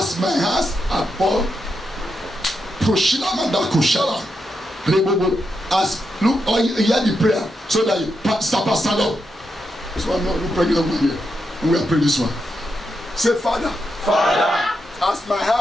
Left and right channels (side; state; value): both; normal; correlation 0.84